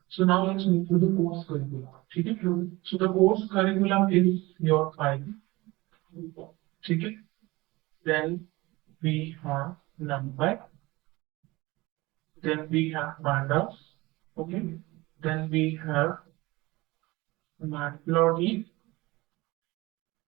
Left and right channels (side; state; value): left; quieter; 21.4 dB